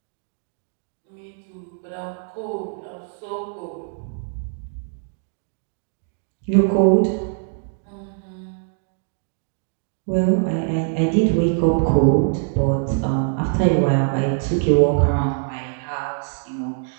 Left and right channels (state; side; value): silent; left; digital silence